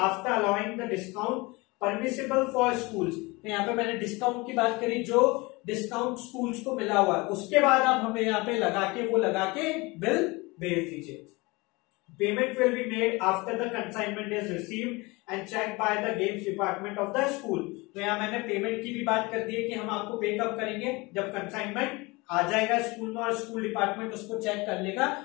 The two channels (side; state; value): right; quieter; 24.4 dB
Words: allowing the discount permissible for schools. तो यहाँ पे मैंने डिस्काउंट की बात करी, जो डिस्काउंट स्कूल्स को मिला हुआ है, उसके बाद आप हमें यहाँ पे लगा के बिल भेज दीजिए। Payment will be made after the consignment is received and check by the games department of the school. तो यहाँ मैंने पेमेंट की भी बात कर दी है कि हम आपको पे कब करेंगे, जब कंसाइनमेंट आ जाएगा स्कूल में और स्कूल डिपार्टमेंट उसको चेक कर लेगा